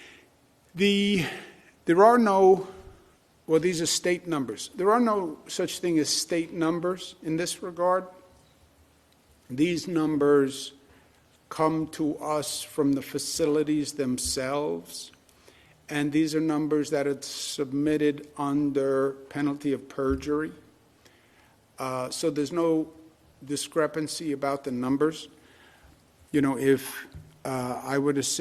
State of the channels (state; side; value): identical; both; correlation 1.00